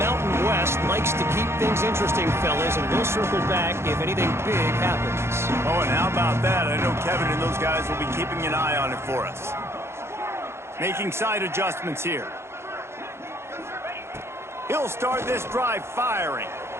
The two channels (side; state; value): left; late; 0.12 ms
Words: West likes to keep things interesting, fellas, and we'll circle back if anything big happens. Oh, and how about that? I know Kevin and those guys will be keeping an eye on it for us. Making side adjustments here. He'll start this drive firing.